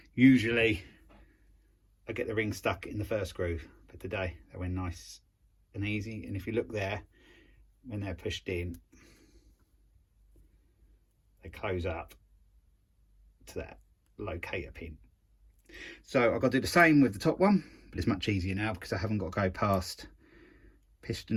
Usually I get the ring stuck in the first groove, but today they went nice and easy. And if you look there, when they're pushed in, they close up to that locator pin. So I've got to do the same with the top one, but it's much easier now because I haven't got to go past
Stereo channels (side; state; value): both; identical; correlation 1.00